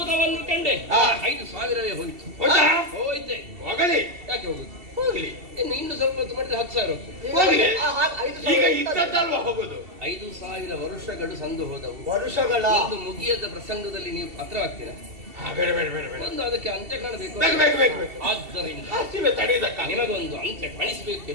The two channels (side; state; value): left; late; 2.7 ms